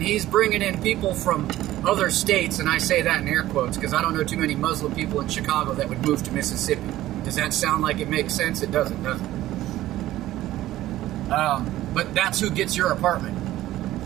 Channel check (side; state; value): left; quieter; 14.9 dB